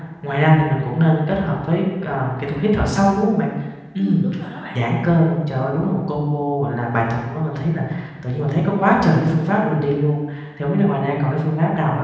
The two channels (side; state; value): both; identical; correlation 1.00